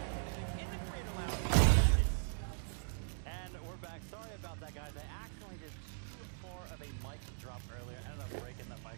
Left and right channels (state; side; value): silent; left; digital silence